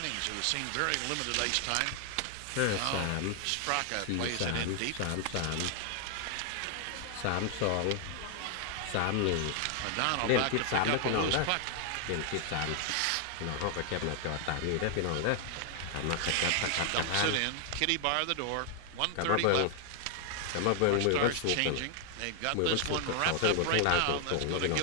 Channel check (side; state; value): both; different; correlation 0.00